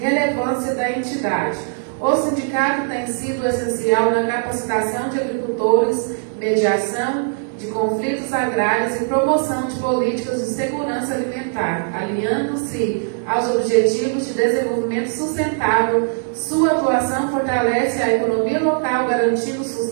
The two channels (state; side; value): silent; left; digital silence